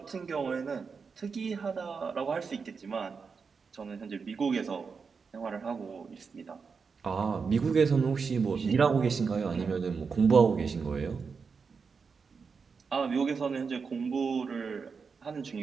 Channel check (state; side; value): quieter; left; 5.4 dB